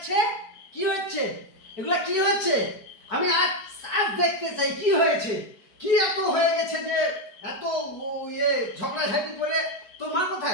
কি হচ্ছে? এগুলা কি হচ্ছে? আমি আজ আজ দেখতে চাই কি হয়েছে। কি এত হয়ে গেছে যে এত ঝগড়াঝাটি করে? তোর মা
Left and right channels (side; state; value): right; late; 4.5 ms